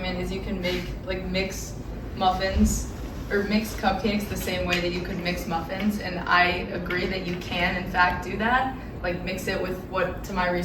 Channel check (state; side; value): identical; both; correlation 1.00